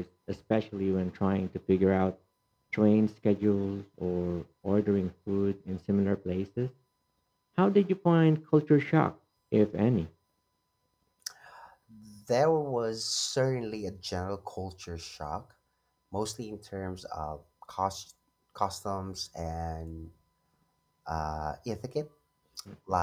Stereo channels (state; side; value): identical; both; correlation 1.00